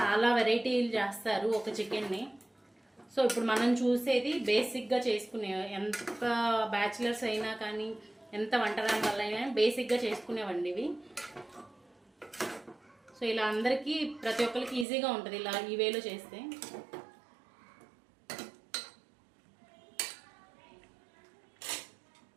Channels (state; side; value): drops out; left; at 14.9 s